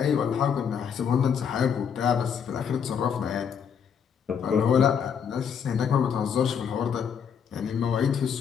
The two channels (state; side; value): quieter; right; 7.4 dB